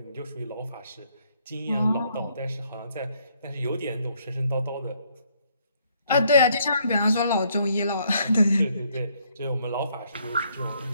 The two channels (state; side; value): inverted; both; correlation -0.68